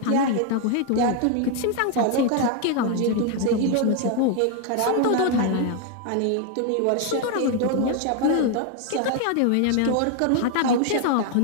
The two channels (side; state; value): both; different; correlation 0.01